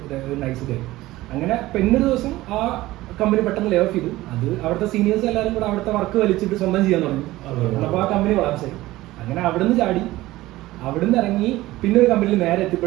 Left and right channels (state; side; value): quieter; left; 17.4 dB